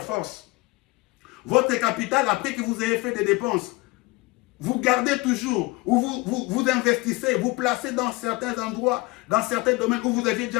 force. Votre capital, après que vous ayez fait des dépenses, vous gardez toujours, ou vous investissez, vous placez dans certains endroits, dans certains domaines où vous aviez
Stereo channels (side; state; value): right; quieter; 23.3 dB